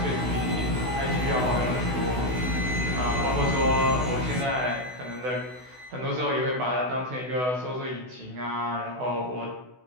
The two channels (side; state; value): left; late; 16 ms